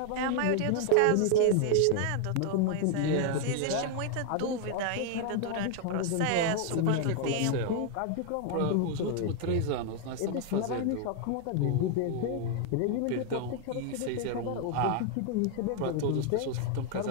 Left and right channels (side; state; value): both; different; correlation 0.00